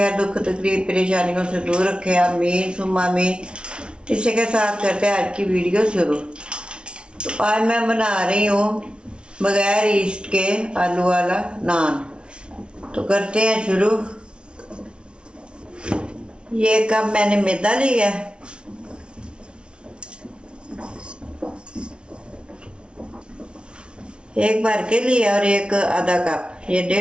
दुख तकलीफ परेशानियों से दूर रखे, आमीन सुम्मा आमीन। इसी के साथ करते हैं आज की वीडियो शुरू। तो आज मैं बना रही हूँ बगैर ईस्ट के आलू वाला नान। तो करते हैं शुरू। ये कप मैंने मैदा लिया, एक भर के लिया, और एक आधा कप, ये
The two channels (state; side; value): late; left; 0.057 ms